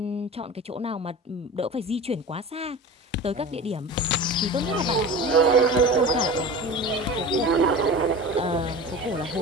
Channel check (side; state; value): both; normal; correlation 0.34